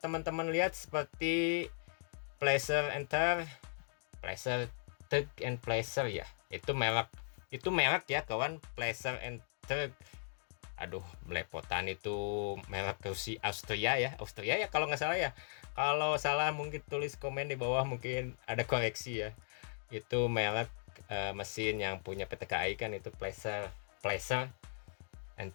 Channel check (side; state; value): right; silent; digital silence